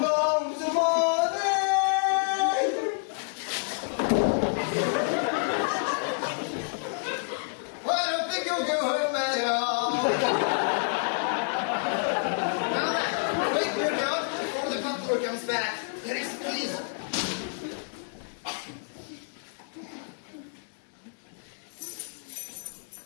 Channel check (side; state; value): right; silent; digital silence